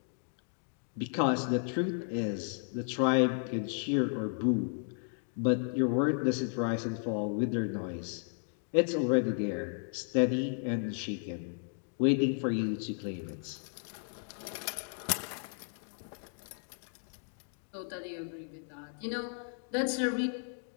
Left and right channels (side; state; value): right; silent; 55 dB below the other